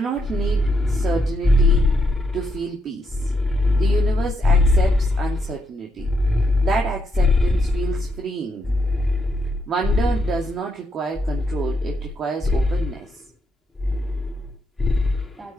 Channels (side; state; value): both; normal; correlation 0.79